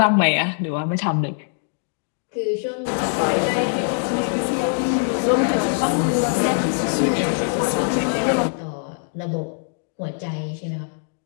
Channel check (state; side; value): silent; right; 61 dB below the other